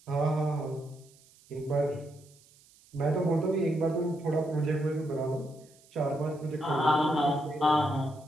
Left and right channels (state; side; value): noise; right; hiss, 28 dB below the sound